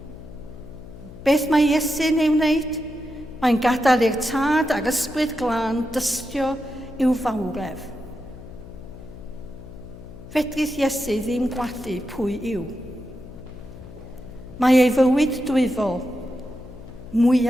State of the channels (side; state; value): left; noise; hum, 16 dB below the sound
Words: Beth mae Iesu'n ei wneud? Mae'n gadael i'r tad a'r ysbryd glân dystio i'w fawredd. Fedrith Iesu ddim gwadu pwy yw. Mae ei fywyd dwyfol